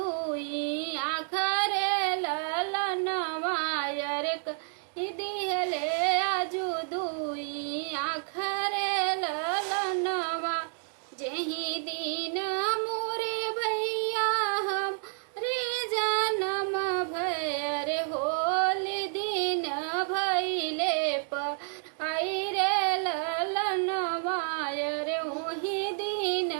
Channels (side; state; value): left; silent; 58 dB below the other